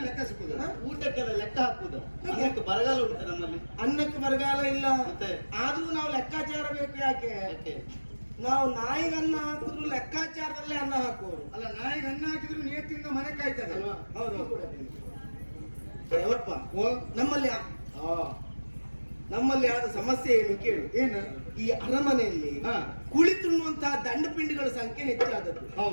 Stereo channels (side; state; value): both; inverted; correlation -1.00